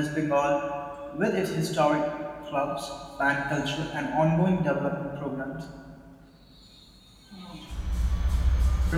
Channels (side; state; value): both; identical; correlation 1.00